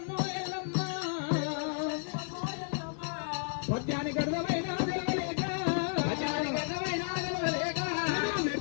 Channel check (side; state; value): right; silent; 56 dB below the other